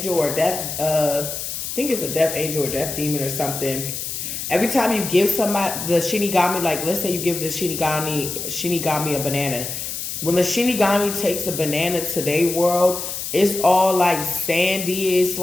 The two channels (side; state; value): left; noise; hiss, 5 dB below the sound